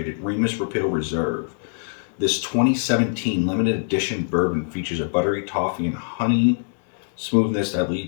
Remus Repeal Reserve. This 2017 limited edition bourbon features a buttery toffee and honey smoothness that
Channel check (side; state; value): right; silent; 63 dB below the other